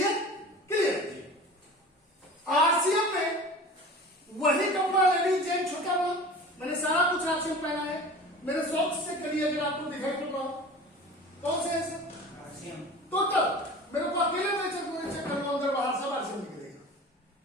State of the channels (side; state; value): both; normal; correlation 0.38